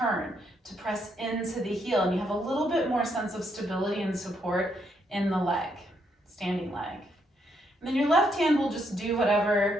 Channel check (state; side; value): normal; both; correlation 0.75